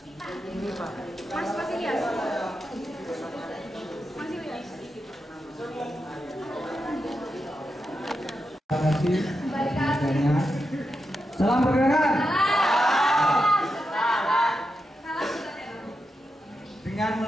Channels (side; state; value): both; normal; correlation 0.87